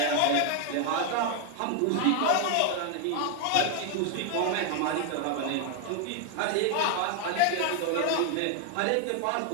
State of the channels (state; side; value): different; both; correlation 0.01